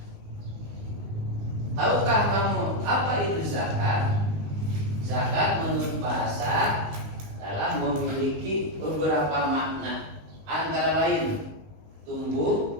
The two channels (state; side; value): late; left; 19 ms